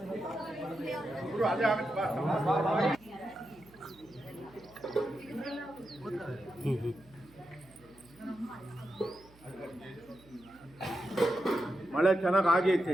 ಮಳೆ ಚೆನ್ನಾಗಿ ಆಗೈತೆ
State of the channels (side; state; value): right; noise; hum, 26 dB below the sound